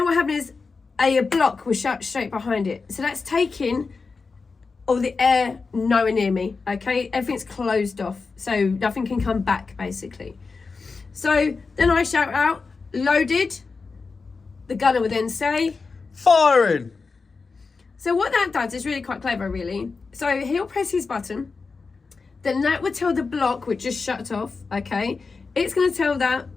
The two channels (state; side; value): quieter; right; 4.5 dB